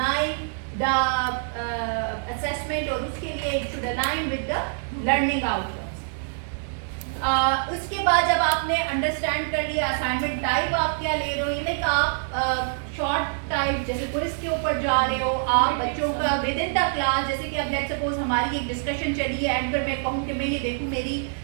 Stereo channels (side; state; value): left; silent; 61 dB below the other